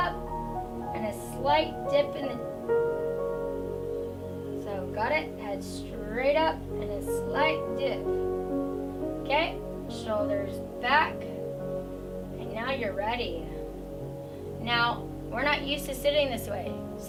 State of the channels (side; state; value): both; identical; correlation 1.00